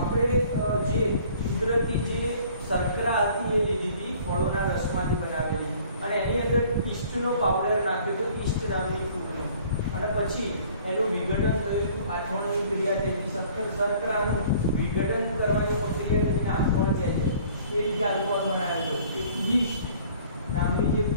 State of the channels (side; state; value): both; inverted; correlation -0.53